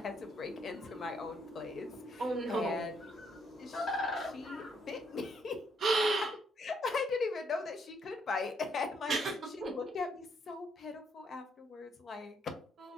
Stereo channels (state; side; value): normal; both; correlation 0.72